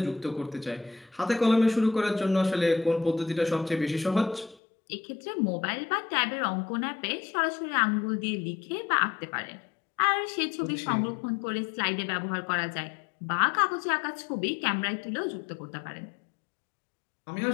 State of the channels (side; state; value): right; drops out; at 4.5 s